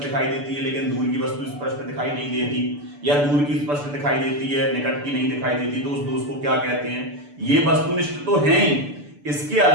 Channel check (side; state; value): left; late; 6.9 ms